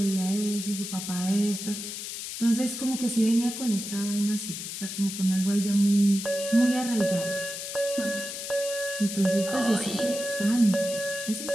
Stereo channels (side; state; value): left; noise; hiss, 7 dB below the sound